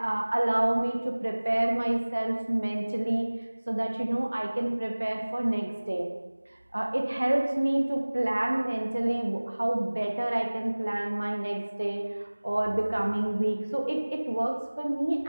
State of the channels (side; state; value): both; inverted; correlation -1.00